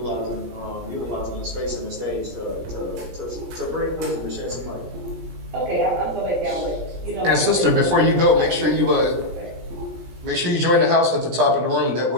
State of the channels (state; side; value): late; left; 17 ms